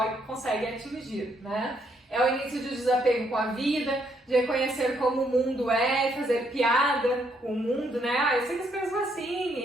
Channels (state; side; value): normal; both; correlation 0.73